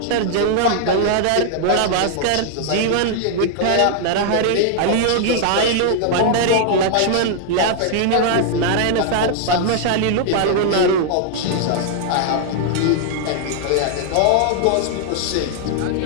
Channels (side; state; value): both; different; correlation -0.01